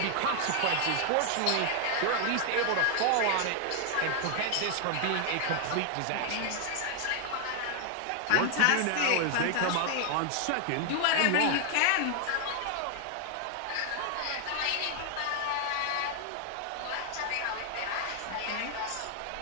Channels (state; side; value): different; both; correlation 0.00